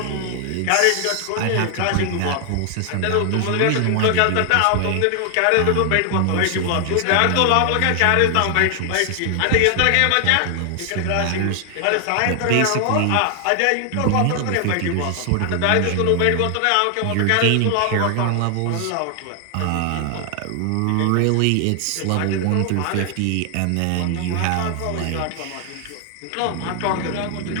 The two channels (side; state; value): both; different; correlation 0.00